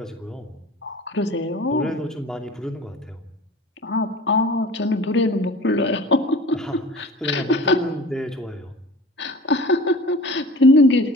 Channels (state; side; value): normal; both; correlation 0.40